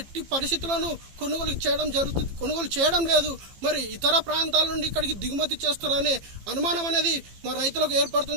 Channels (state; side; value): late; left; 15 ms